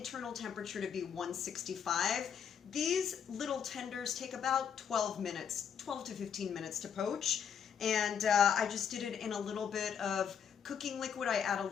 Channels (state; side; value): quieter; right; 7.7 dB